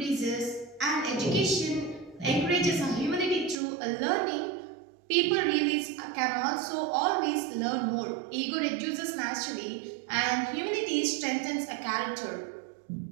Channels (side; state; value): left; drops out; at 3.6 s